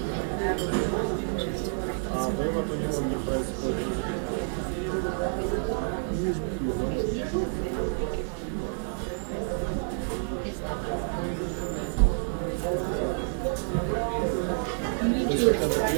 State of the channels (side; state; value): left; silent; 59 dB below the other